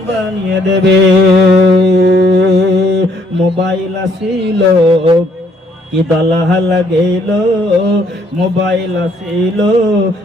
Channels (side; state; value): both; normal; correlation 0.67